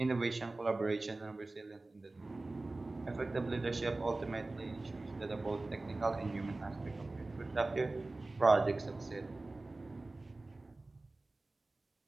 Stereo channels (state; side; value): quieter; left; 3.1 dB